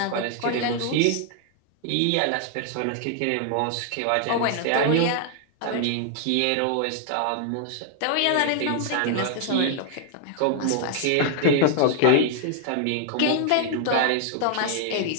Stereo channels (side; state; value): both; different; correlation 0.00